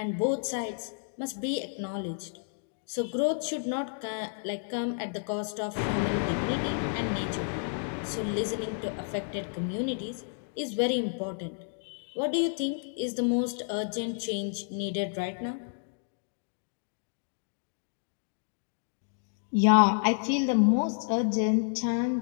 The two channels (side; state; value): right; silent; digital silence